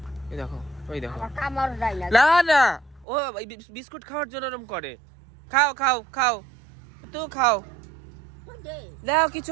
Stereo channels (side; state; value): left; drops out; at 3.1 s